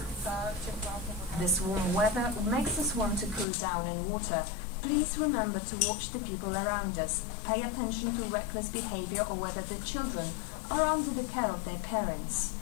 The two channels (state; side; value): drops out; right; at 3.5 s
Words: This warm weather makes us want to cool down in water. Please remember to watch the people around us. Pay attention to reckless behavior or whether the children are under the care of their parents.